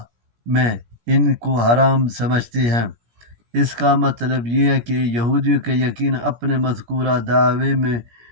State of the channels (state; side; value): late; left; 17 ms